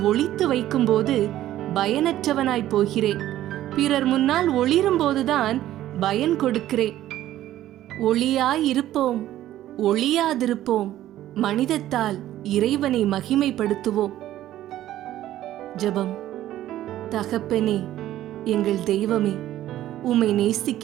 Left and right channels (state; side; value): quieter; left; 13.5 dB